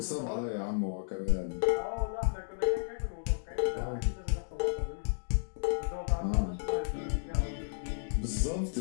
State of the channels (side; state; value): right; silent; digital silence